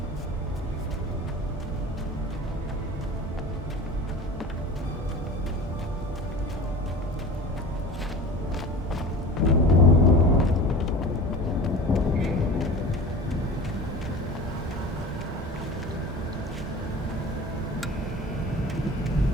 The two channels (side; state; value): both; normal; correlation 0.36